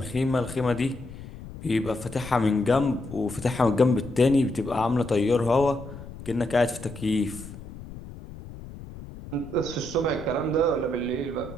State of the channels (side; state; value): left; noise; rumble, 14 dB below the sound